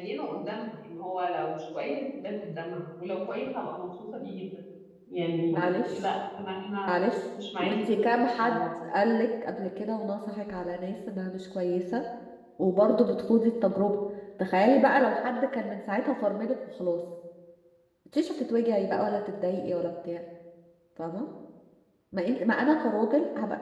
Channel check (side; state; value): both; identical; correlation 1.00